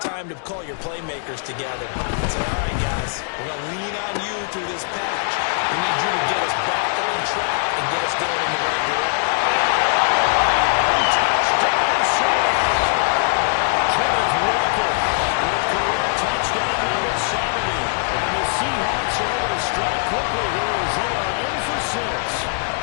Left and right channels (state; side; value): silent; right; digital silence